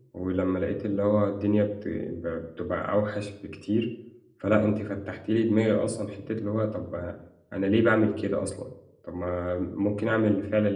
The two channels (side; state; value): both; identical; correlation 1.00